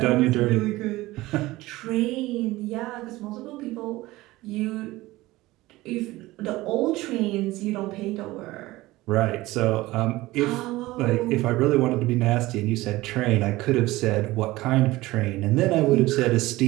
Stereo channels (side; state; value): left; quieter; 18.7 dB